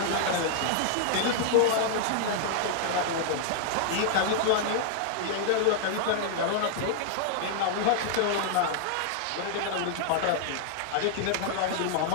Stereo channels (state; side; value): different; both; correlation -0.01